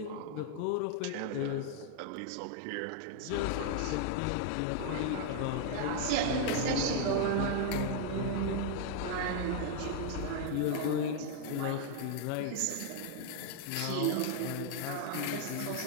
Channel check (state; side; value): different; both; correlation 0.00